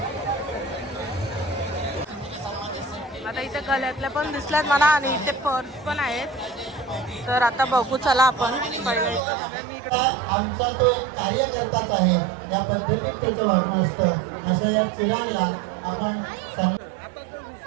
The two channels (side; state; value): left; drops out; at 9.2 s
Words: आता इथे गळ्यातल्या पण दिसल्यात मला आणि इथे पर्स पण आहेत. तर आता बघू चला आपण पहिलं. आमचा तो एक कार्यकर्ताच आहे, या पद्धतीत त्याचं वागणं असतं. असं या चिरागला आपण